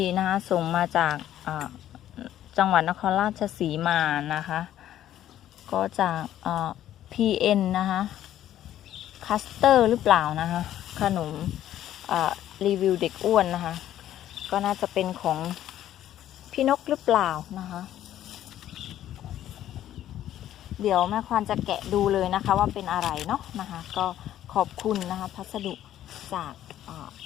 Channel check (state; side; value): quieter; right; 12.1 dB